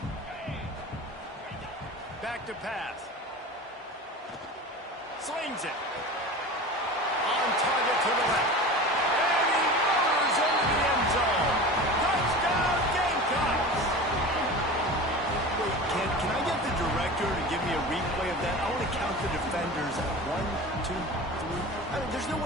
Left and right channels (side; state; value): both; normal; correlation 0.33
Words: Back to pass. Slings it. On target to the left. And he motors into the end zone. Touchdown, Gamecocks! Wait, can I get the director to give me a replay of that? I want to count the defenders at 1, 2, 3. I mean, there's no